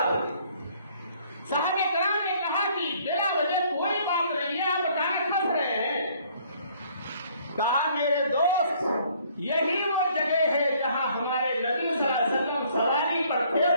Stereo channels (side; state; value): both; inverted; correlation -0.61